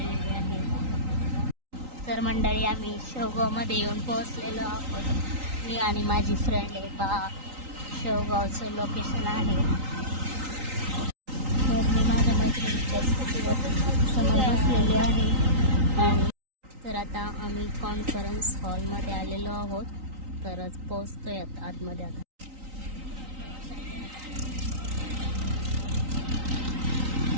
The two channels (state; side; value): late; left; 3.9 ms